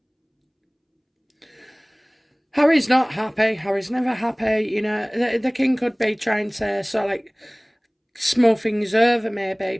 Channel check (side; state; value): both; identical; correlation 1.00